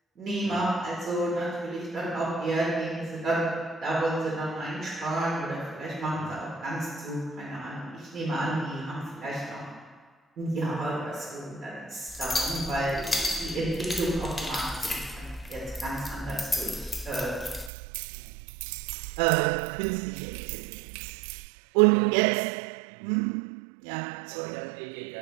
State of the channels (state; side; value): drops out; left; at 17.7 s